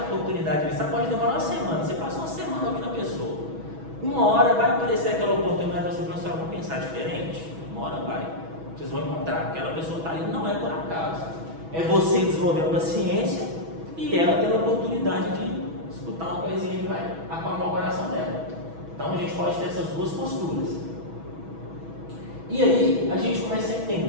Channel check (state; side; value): late; left; 6.2 ms